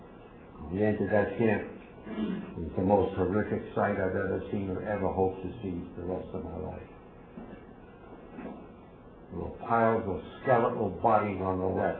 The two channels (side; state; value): both; identical; correlation 1.00